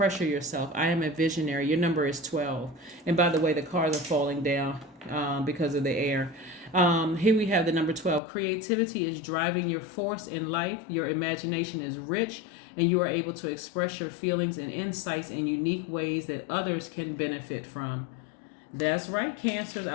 yourself. I am a visionary. Your number is 12. And by the way, the cars are falling down because of the air. Here we have the number 12. Creativity is driving your force in life. Your imagination is rich, and you are able to express your feelings and insights in unique ways that others can benefit from. That's right, Cancers.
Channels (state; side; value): drops out; right; at 8.2 s